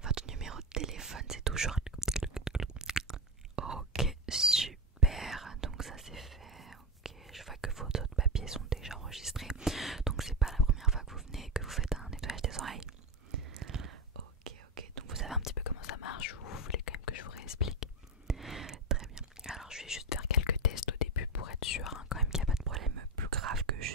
Votre numéro de téléphone c'est toujours... Ok, super. Donc ça c'est fait. Ok, je vois que vos autres papiers sont déjà enregistrés. Donc c'est pas la première fois que vous venez et que vous faites un nettoyage des oreilles. Ok, ok. Donc vous savez un petit peu comment ça marche ou vous voulez quand même que je vous réexplique? Très bien. Alors je vais juste faire quelques tests au début pour être sûr quand même qu'il n'y a pas de problème plus grave que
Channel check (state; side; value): normal; both; correlation 0.14